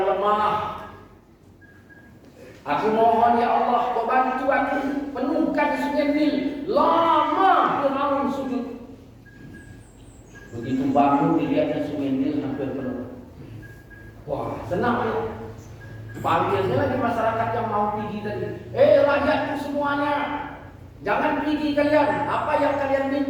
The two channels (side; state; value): both; identical; correlation 1.00